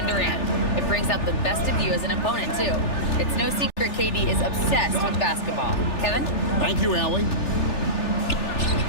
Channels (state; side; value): late; right; 3.4 ms